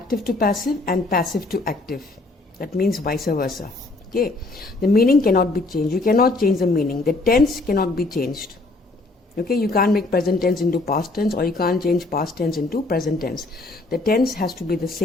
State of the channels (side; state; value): right; quieter; 3.1 dB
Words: to passive and passive to active. That means vice versa. Okay. The meaning cannot be changed. You cannot change the meaning. The tense cannot be changed. Okay, you can't make present tense into past tense, or you can't change past tense into present tense. The tense has to be the